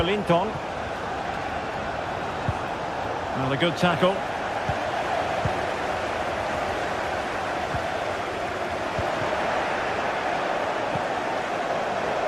Well, a good tackle.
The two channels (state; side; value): identical; both; correlation 1.00